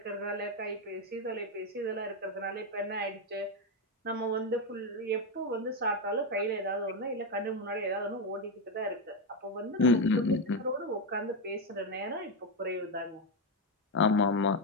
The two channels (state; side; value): normal; both; correlation 0.07